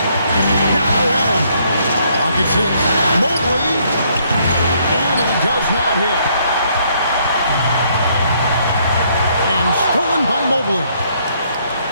Now Allen. Pocket 6. Mobley. And he does not hit. And stolen by Mobley.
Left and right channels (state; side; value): inverted; both; correlation -0.68